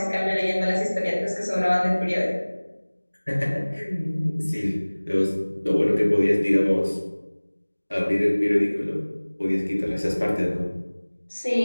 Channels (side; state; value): both; inverted; correlation -1.00